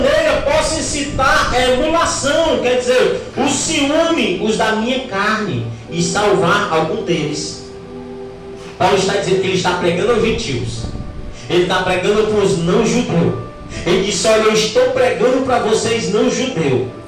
posso incitar a emulação, quer dizer, o ciúme, os da minha carne, e salvar algum deles. Paulo está dizendo que ele está pregando aos gentios, ele está pregando para os não judeus. Ele disse: olha, eu estou pregando para vocês não judeus.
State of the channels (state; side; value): identical; both; correlation 1.00